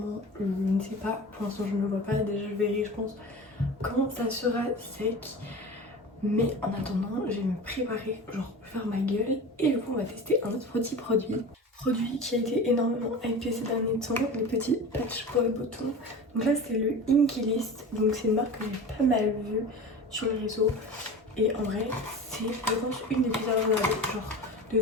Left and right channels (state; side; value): normal; both; correlation 0.33